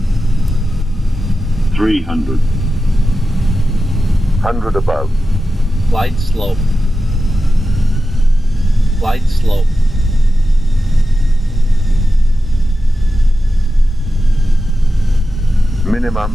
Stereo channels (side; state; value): both; normal; correlation 0.92